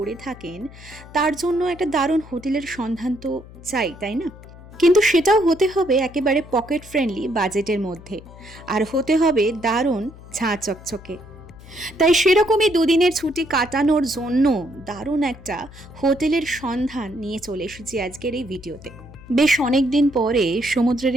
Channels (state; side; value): noise; left; hum, 19 dB below the sound